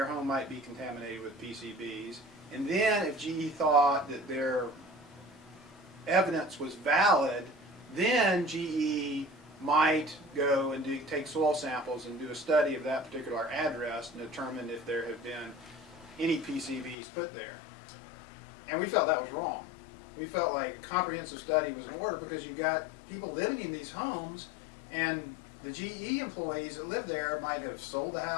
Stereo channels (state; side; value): drops out; right; at 16.9 s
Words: home might be contaminated with PCBs. And then if GE thought that their evidence was valid, then GE might go and take soil samples and do a study of that particular address and determine if there have been any PCBs put there. And we felt that was wrong. We felt like a comprehensive study was in order because you've got people living in these homes, and the GE employees that live there might have sold the